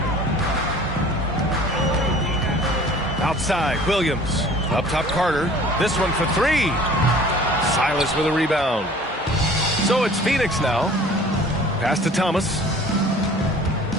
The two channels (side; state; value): both; normal; correlation 0.48